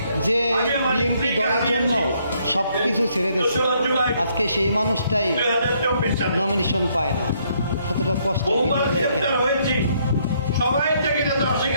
যে বিএনপি দলের জন্য সব কিছু ছেড়ে দিচ্ছে, আজকে সেই মানুষটাই নমিনেশন পায় না। কতটা কষ্ট ভিডিও দেখেন। সবাই থেকে যাতে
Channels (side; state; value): both; inverted; correlation -0.70